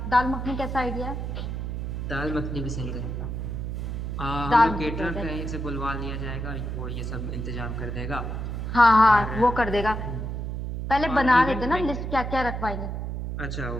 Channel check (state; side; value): noise; right; hum, 4 dB below the sound